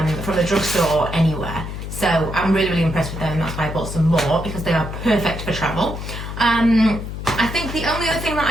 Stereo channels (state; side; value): noise; left; hum, 7 dB below the sound